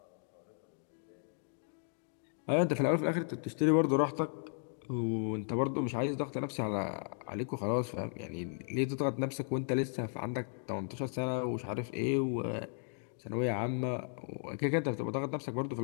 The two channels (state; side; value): silent; right; 54 dB below the other